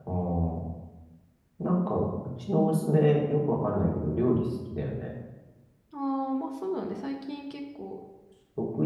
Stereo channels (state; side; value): identical; both; correlation 1.00